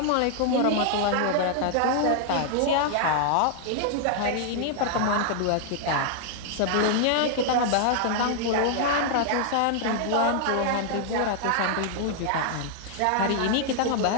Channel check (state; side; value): different; both; correlation 0.00